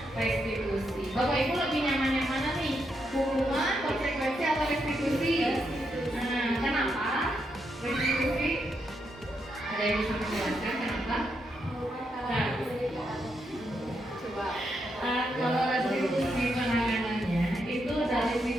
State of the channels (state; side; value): normal; both; correlation 0.81